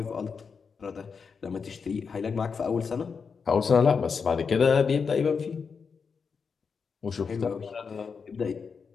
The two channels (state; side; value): quieter; right; 5.6 dB